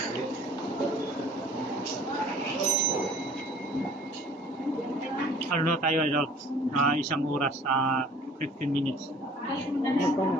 ano na tayo, idol? 1 oras, 15 minutes.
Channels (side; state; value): both; normal; correlation 0.51